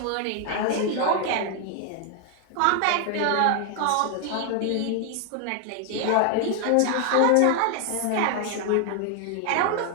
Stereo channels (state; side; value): different; both; correlation 0.00